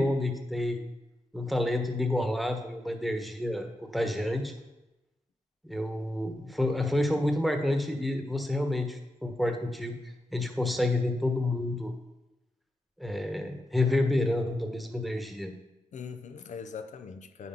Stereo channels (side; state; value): both; normal; correlation 0.87